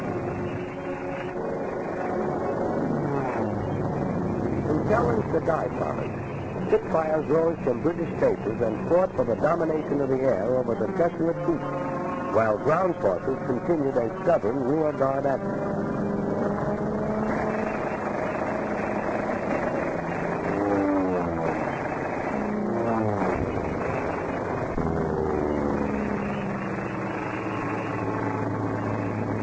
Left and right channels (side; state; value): both; identical; correlation 1.00